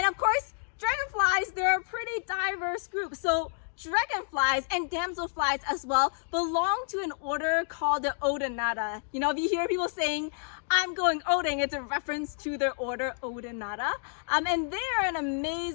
of course, dragonflies, they're a pretty diverse group. So dragonflies and damselflies as well belong to an order called the Odonata. You know, if you hear people saying, I'm going oding, it's a reference to their order Odonata. And they're an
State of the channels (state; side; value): silent; right; digital silence